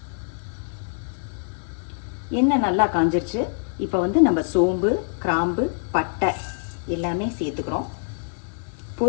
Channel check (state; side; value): silent; right; digital silence